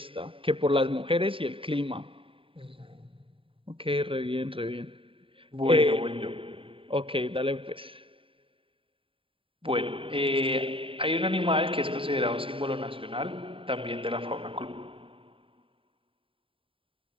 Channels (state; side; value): late; left; 0.26 ms